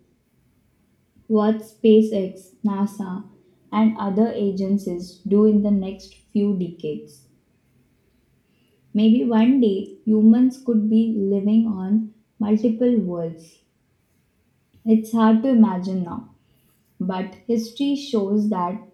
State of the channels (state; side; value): identical; both; correlation 1.00